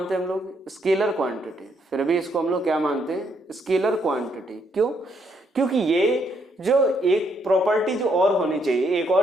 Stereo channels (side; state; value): both; normal; correlation 0.73